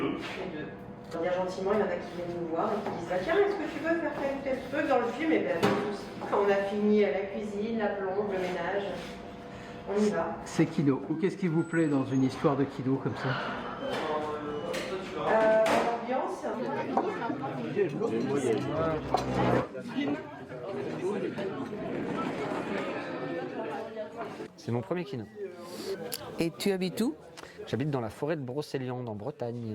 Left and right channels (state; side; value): identical; both; correlation 1.00